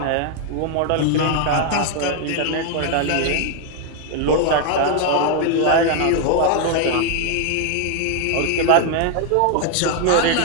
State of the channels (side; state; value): both; different; correlation 0.00